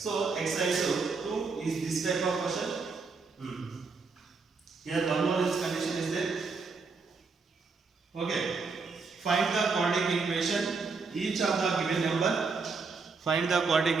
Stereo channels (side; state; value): left; quieter; 4.5 dB